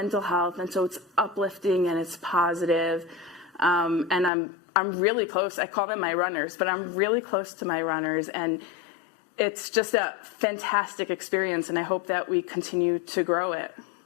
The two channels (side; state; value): right; drops out; at 4.3 s